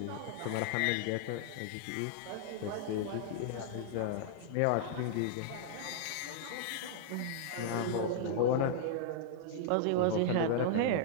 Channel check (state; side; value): different; both; correlation -0.01